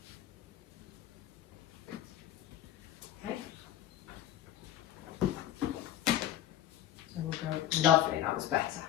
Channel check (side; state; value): right; quieter; 12.3 dB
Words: Lovely, that was better.